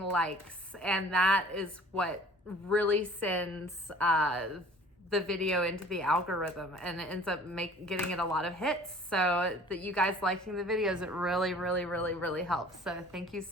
likes, and that is what really sends the video into the algorithm, and it ends up getting it a lot of hits. So that you guys liking the videos, it really helps. So thank you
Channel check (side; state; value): both; normal; correlation 0.49